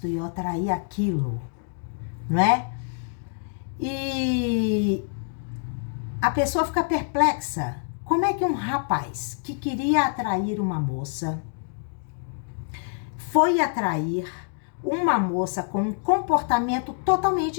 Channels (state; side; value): silent; right; 61 dB below the other